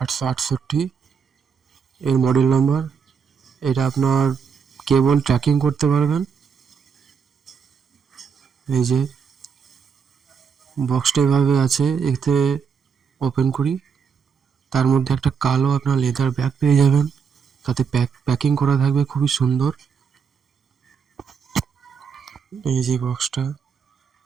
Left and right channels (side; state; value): left; quieter; 6.5 dB